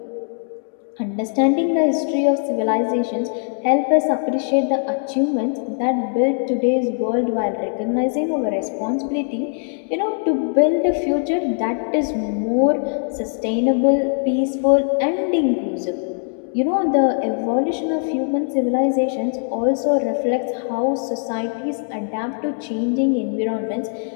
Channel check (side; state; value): right; silent; 57 dB below the other